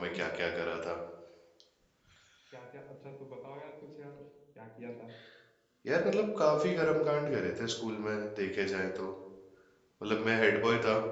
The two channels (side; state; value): both; identical; correlation 1.00